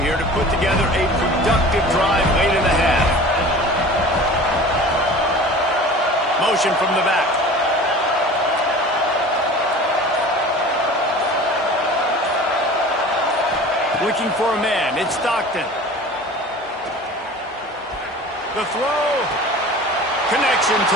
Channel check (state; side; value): normal; both; correlation 0.40